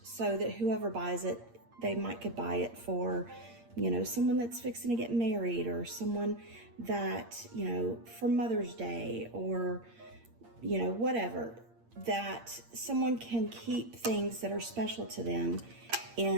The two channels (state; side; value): late; left; 8.6 ms